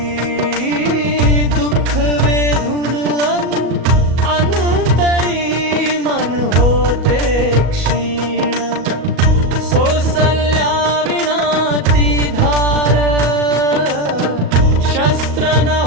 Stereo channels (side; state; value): left; late; 37 ms